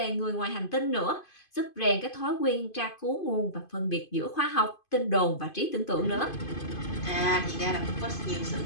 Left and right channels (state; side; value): late; right; 2.5 ms